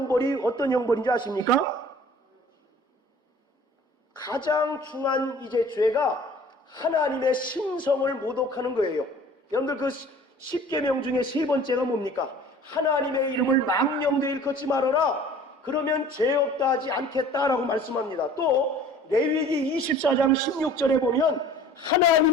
어떤 형벌인지 아십니까? 가장 중한 이제 죄가 하나님의 신성을 모독하는 거예요. 여러분들, 그 10계명 중에 세 번째가 뭡니까? 하나님의 이름을 망령되이 일컫지 말아라. 그러면 죄 없다 하지 않겠다라고 말씀합니다. 또 레위기 24장 16절에 보면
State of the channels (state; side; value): normal; both; correlation 0.48